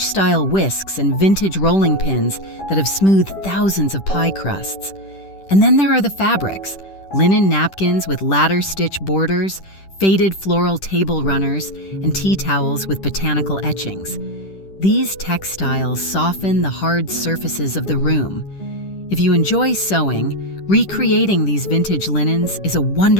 whisks and vintage rolling pins that have smoothed thousands of pie crusts. And then there are the fabrics, linen napkins with ladder-stitch borders, faded floral table runners, and tea towels with botanical etchings. These textiles soften the hard surfaces of the room. If you enjoy sewing, recreating these vintage linens is a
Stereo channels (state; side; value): late; right; 10 ms